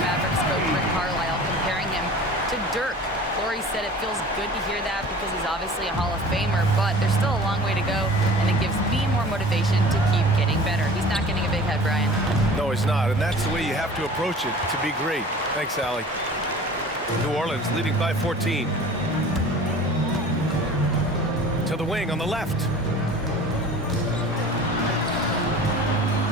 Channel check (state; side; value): normal; both; correlation 0.43